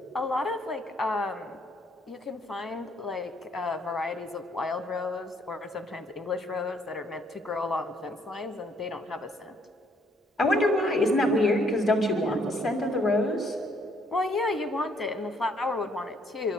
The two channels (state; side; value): normal; both; correlation 0.67